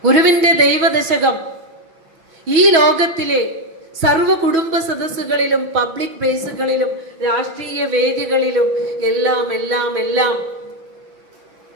ഗുരുവിന്റെ ദൈവദശകം ഈ ലോകത്തിലെ സർവ കുടുംബ സദസ്സുകളിലും പബ്ലിക് പ്ലേസുകളിലും രാഷ്ട്രീയ വേദികളിലും എല്ലാം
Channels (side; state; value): left; late; 6.3 ms